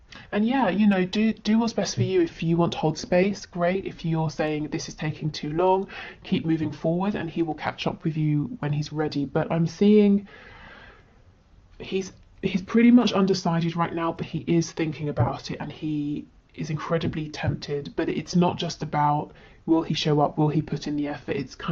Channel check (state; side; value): identical; both; correlation 1.00